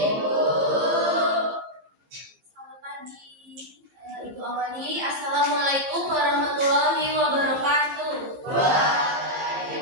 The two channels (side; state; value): left; late; 15 ms